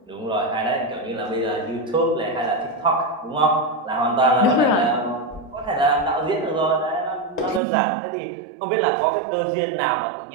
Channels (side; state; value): left; drops out; at 7.6 s